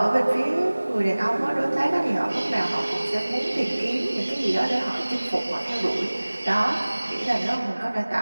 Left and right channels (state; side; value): inverted; both; correlation -1.00